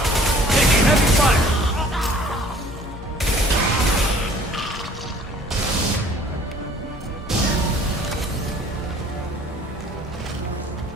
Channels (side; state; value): both; normal; correlation 0.53